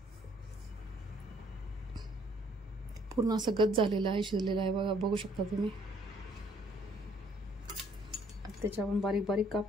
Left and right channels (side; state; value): both; normal; correlation 0.63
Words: पूर्ण असं गच झालेलं आहे, शिजलेलं आहे बघा, बघू शकता तुम्ही. त्याचे आपण बारीक बारीक